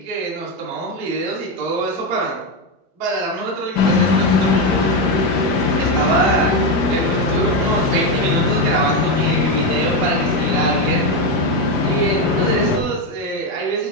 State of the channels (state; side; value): normal; both; correlation 0.09